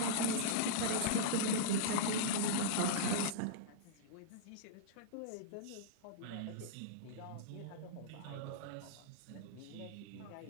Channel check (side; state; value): both; different; correlation -0.03